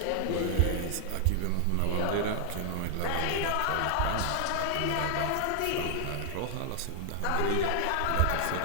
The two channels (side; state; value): both; different; correlation 0.00